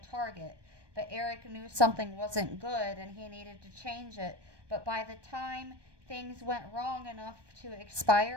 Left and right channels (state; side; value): late; left; 1.2 ms